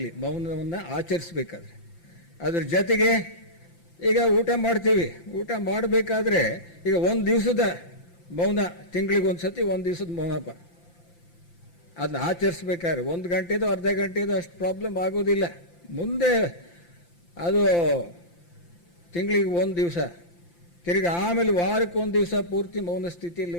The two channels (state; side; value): late; right; 5.8 ms